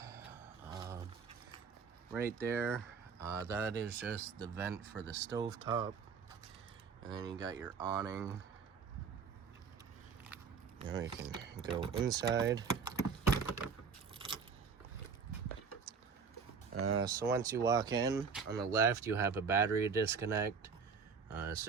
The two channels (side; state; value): left; quieter; 5.7 dB